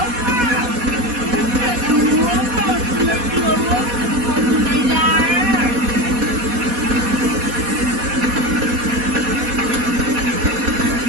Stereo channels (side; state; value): left; late; 4.2 ms